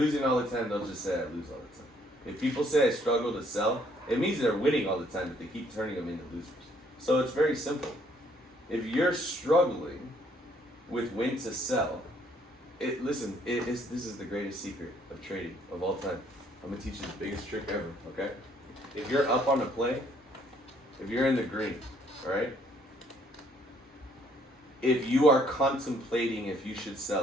all the time, they'll just say I lose all the time. If people say I struggle to sell, it means they're winning all the time, but they keep turning them into losers. So it's very simple. If you're struggling with when to sell, this is the greatest secret of trading of all time. I'm gonna teach you the biggest trick ever, okay? If you're up on a play, if you're in the green, all right? If you are contemplating if you should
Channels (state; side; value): normal; both; correlation 0.65